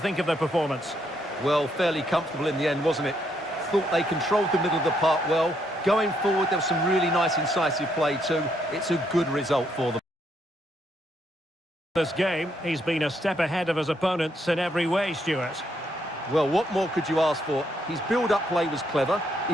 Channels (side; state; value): both; normal; correlation 0.74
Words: of their performance? Well, fairly comfortable in the end, wasn't it? Thought they controlled the middle of the park well. Going forward, there was some really nice incisive play too. It's a good result for them. This game, he's been a step ahead of his opponents in every way, Stuart. Well, what more could you ask for? His build-up play was clever,